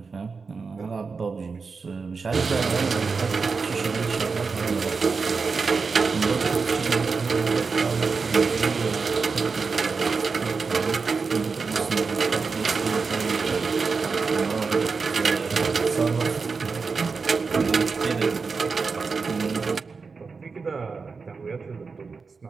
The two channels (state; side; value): quieter; left; 4.8 dB